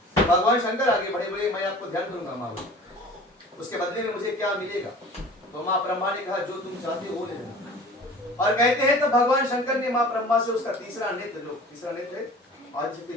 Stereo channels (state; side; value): normal; both; correlation 0.43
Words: भगवान शंकर आगे बढ़े, बोले मैं आपको ध्यान करूंगा माँ, बोले उसके बदले में मुझे क्या मिलेगा। तो माँ ब्रह्मा ने कहा जो तुम चाहते हो वो ले लेना। और कहते हैं तो भगवान शंकर ने माँ ब्रह्मा से उसका तीसरा नेत्र आदिशक्ति